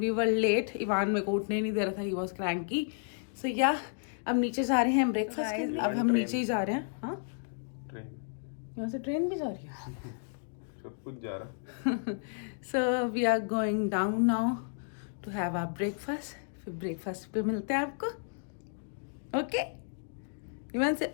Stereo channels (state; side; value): silent; right; digital silence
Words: वर लेट. इवान मेरे को उठने नहीं दे रहा था, he was cranky. So yeah अब नीचे जा रहे हैं ब्रेकफास्ट के लिए. अब हम नीचे ही जा रहे हैं. हाँ, यहाँ से ट्रेन भी जा रही है. सब कुछ जा रहा. So we are going down now to have our breakfast. फिर ब्रेकफास्ट पे मिलते हैं आपको. ओके, इवान